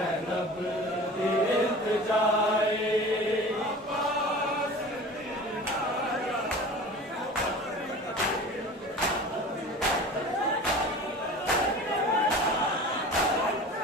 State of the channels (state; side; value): normal; both; correlation 0.38